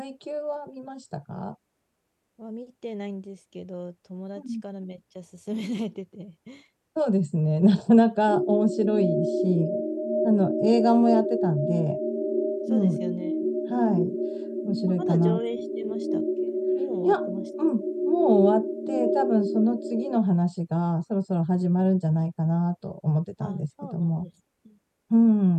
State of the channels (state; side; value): identical; both; correlation 1.00